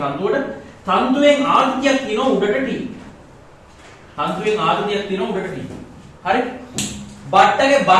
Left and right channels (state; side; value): identical; both; correlation 1.00